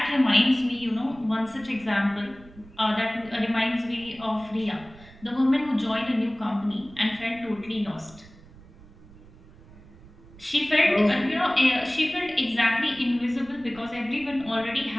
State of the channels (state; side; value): noise; right; rumble, 22 dB below the sound